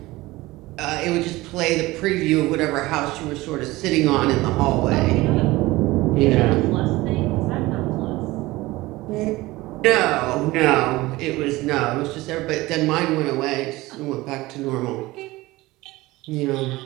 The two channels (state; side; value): quieter; left; 19.6 dB